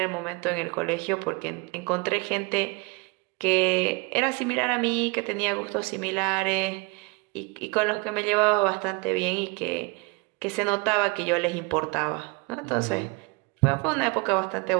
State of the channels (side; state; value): left; quieter; 28.9 dB